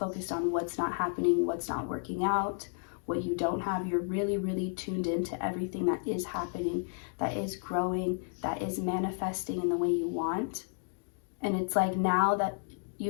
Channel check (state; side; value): silent; right; 56 dB below the other